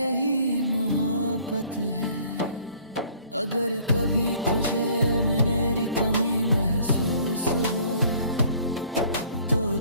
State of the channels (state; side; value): inverted; both; correlation -0.56